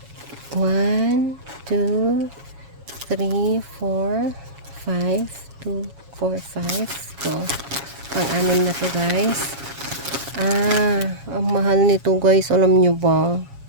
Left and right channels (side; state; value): left; late; 7.2 ms